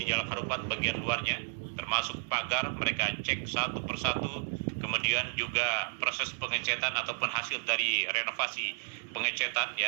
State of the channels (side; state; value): left; silent; 56 dB below the other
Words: Harupat, bagian luarnya, termasuk pagar. Mereka cek satu persatu. Kemudian juga proses pengecetan ataupun hasil dari renovasi pengecetan,